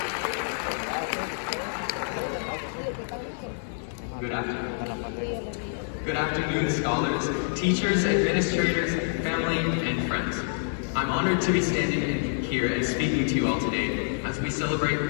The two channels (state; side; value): silent; right; digital silence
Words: Good afternoon, scholars, teachers, administrators, family, and friends. I'm honored to be standing here and speaking to you all today as we celebrate